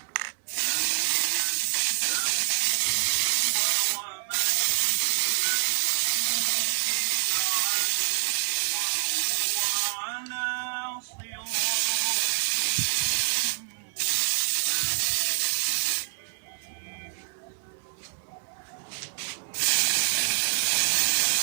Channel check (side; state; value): left; silent; digital silence